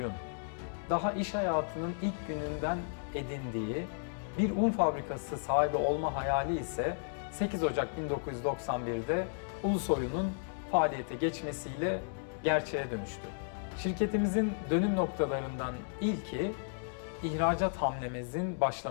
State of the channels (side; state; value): right; silent; digital silence